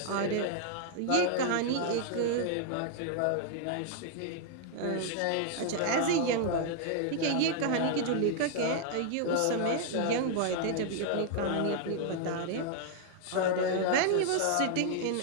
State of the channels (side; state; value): both; different; correlation 0.00